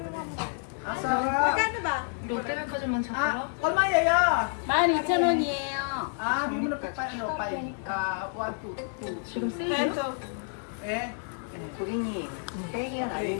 mo. Ang sarap. Magkano ba? 얼마 예요? 12,000원이에요. Bigyan mo na ano, 5. 1, 2. 지금 쓰죠? Eh? 고객님, 땡이는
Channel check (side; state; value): right; silent; 55 dB below the other